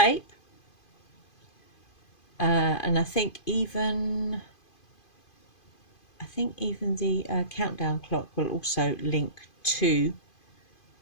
and I think even the countdown clock will also link to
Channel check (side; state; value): right; late; 2.5 ms